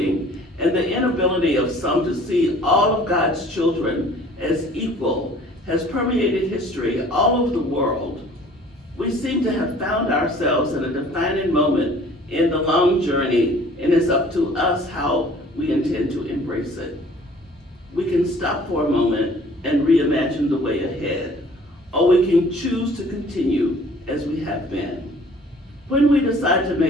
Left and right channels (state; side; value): normal; both; correlation 0.52